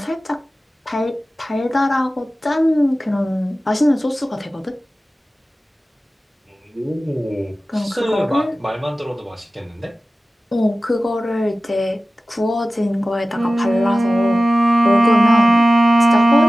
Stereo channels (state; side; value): normal; both; correlation 0.96